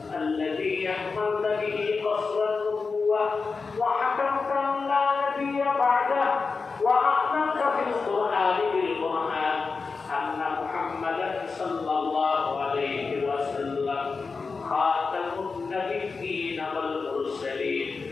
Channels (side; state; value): right; quieter; 4.6 dB